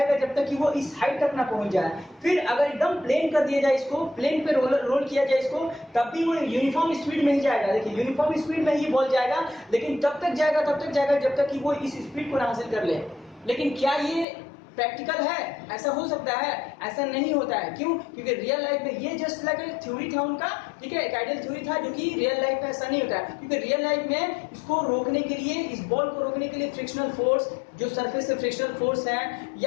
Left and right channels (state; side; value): drops out; right; at 14.2 s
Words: जब तक कि वो इस हाइट तक ना पहुंच जाए। फिर अगर एकदम प्लेन कर दिया जाए इसको, प्लेन पे रोल किया जाए इसको, तब भी वो यूनिफॉर्म स्पीड में ही जाएगा। देखिए यूनिफॉर्म स्पीड में ही बॉल जाएगा, लेकिन तब तक जाएगा जब तक कि वो इस स्पीड को ना हासिल कर ले। लेकिन क्या ये प्रैक्टिकल है? ऐसा हो सकता है? ऐसा नहीं होता है। क्यों? क्योंकि रियल लाइफ में ये जस्ट लाइक एक थ्योरी था उनका, ठीक है, एक आइडियल थ्योरी था, जो कि रियल लाइफ में ऐसा नहीं होता है। क्योंकि रियल लाइफ में इसको रोकने के लिए, इस बॉल को रोकने के लिए फ्रिक्शनल फोर्स, जो सरफेस से फ्रिक्शनल फोर्स है,